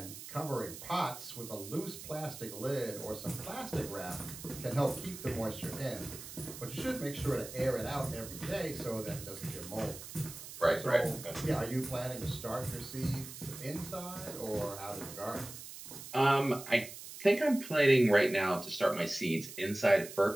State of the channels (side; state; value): right; noise; hiss, 12 dB below the sound